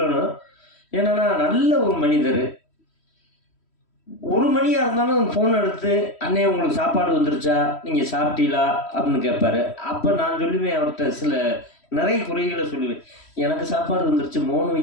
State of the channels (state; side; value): late; right; 3.1 ms